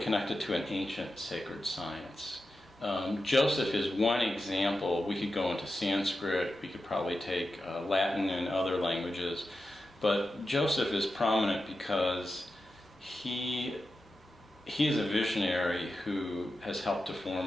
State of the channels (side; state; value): both; normal; correlation 0.91